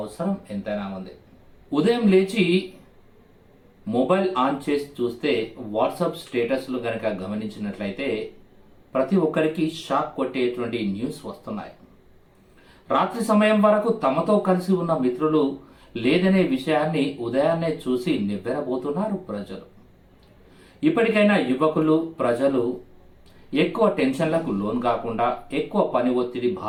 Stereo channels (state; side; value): identical; both; correlation 1.00